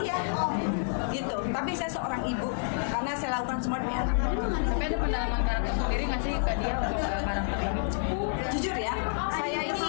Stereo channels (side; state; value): right; silent; 59 dB below the other